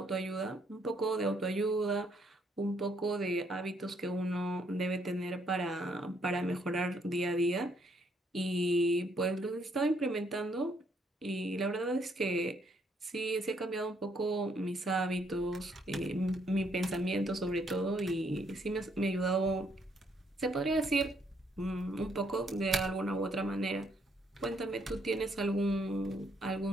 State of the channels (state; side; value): normal; both; correlation 0.70